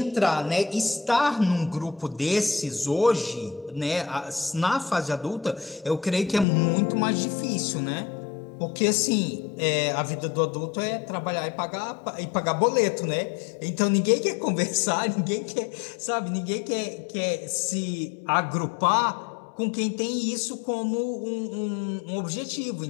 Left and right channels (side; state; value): right; drops out; at 6.5 s